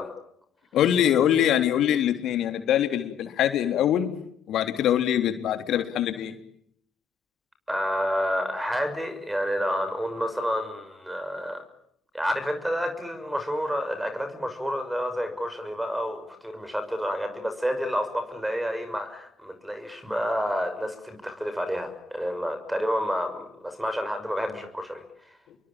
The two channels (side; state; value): right; quieter; 4.3 dB